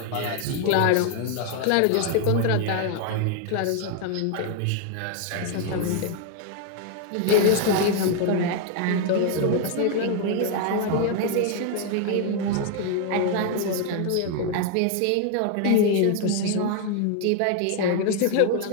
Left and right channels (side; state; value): both; different; correlation 0.00